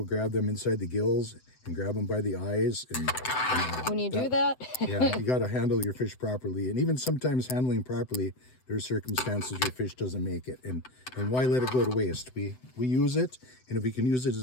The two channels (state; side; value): late; right; 7.9 ms